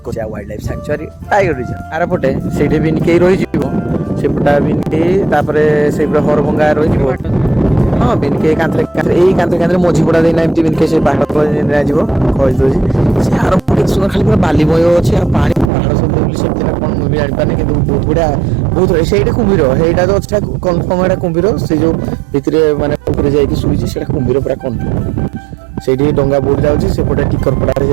wildlife sanctuary tiger reserve आर पटे से बिनके रही सेपटा बिनके से हरभंगा रही हाँ बिनके कांतरे मझीपड़ा देना एमती बिनके से पहाड़ सुंदर खाली पूरा बालीमय अच्छे पानी पहाड़ सब से कौन मुझे जापारे कि बहुत बढ़िया बहुत से कुम्भीर ସେଇଟା तो अच्छा कन्फर्म है कुम्भीर से जो भितर माने जाइए शुई से कुम्भीर पूरा कन्फर्म से डंगा बोट जाऊँगी सेपटे टिकरपड़ा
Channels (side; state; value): left; drops out; at 15.7 s